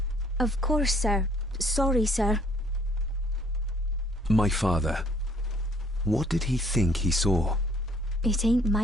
Of course, sir. Sorry, sir. My father. What did he think he saw? It ain't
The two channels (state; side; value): normal; both; correlation 0.61